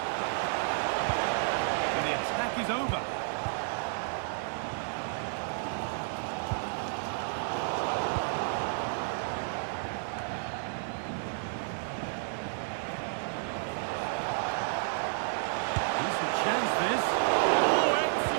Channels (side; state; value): left; silent; digital silence